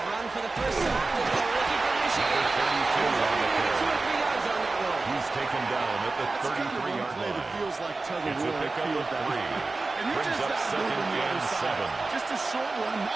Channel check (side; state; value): left; quieter; 3.5 dB